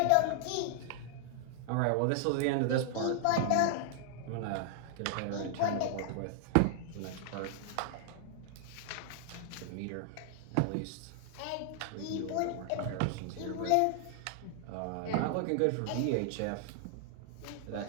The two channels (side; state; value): both; different; correlation 0.00